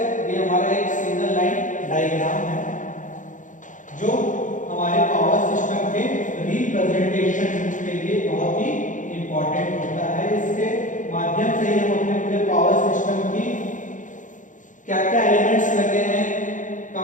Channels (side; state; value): right; late; 0.37 ms